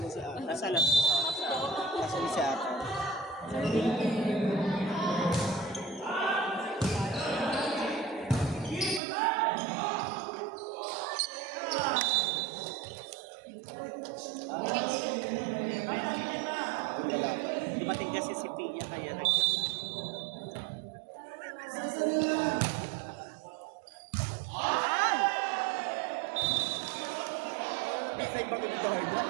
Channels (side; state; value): left; drops out; at 9.0 s